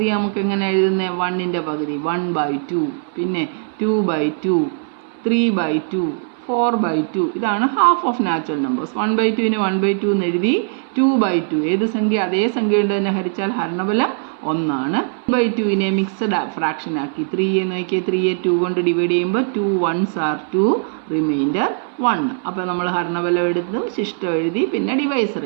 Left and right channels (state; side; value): silent; left; 61 dB below the other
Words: നമുക്ക് എങ്ങനെ എഴുതുന്നത്? 1ൻ്റെ പകുതി 1/2, പിന്നെ 2/2, 3/2, 4/2. ഇതാണ് ഹാഫ് ഓഫ് നാച്ചുറൽ നമ്പേഴ്സ്. 1/2നെ 1/2 എന്ന് എഴുതി. 2/2 ഏത് സംഖ്യ? അതേ സംഖ്യ കൊണ്ട് തന്നെ ഹരിച്ചാൽ ഹരണബലം 1 2/2നെ മിക്സഡ് ഫ്രാക്ഷൻ ആക്കി 3 നോക്കിയാൽ 3യെ 2 കൊണ്ട് ഡിവൈഡ് ചെയ്യുമ്പോൾ 2 1s are 2, റിമൈൻഡർ 1. അപ്പോൾ നമ്മൾ ഹരണബലം എടുത്ത് ശിഷ്ടം എഴുതി, പിന്നെ ഡിവൈസർ